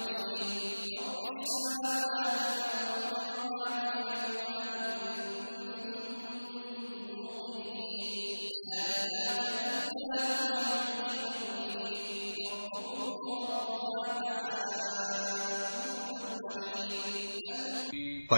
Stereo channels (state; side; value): inverted; both; correlation -1.00